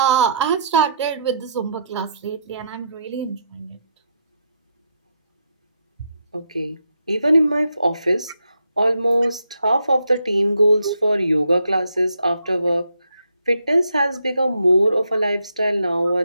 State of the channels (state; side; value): inverted; both; correlation -0.76